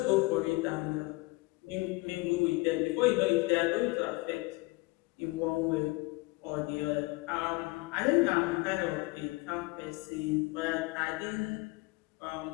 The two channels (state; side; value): quieter; right; 23.9 dB